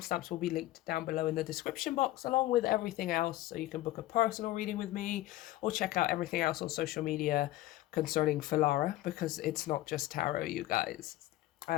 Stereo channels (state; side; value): quieter; right; 16.1 dB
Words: will be linked down below in the description box, along with everything else, so you can book a personal reading with me or check out everything else on social media concerning Filara, because it's not just tarot, you guys.